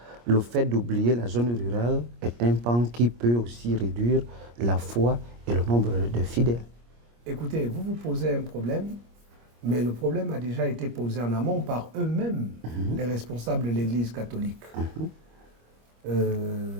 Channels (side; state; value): left; late; 25 ms